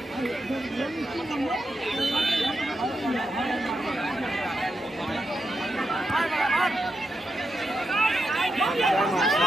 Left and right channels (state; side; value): normal; both; correlation 0.86